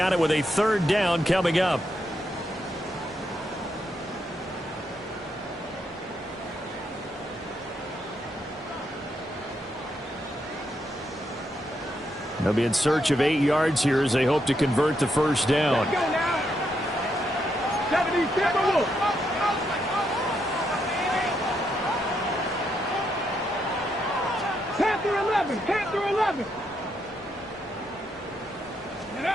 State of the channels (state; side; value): normal; both; correlation 0.79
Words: it with a 3rd down coming up. They'll be in search of 8 yards here as they hope to convert the first down. Let's go now. 77 Wolf. 10 through 11, 10 through 11.